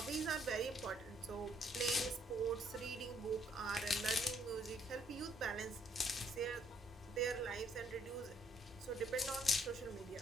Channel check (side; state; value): both; normal; correlation 0.68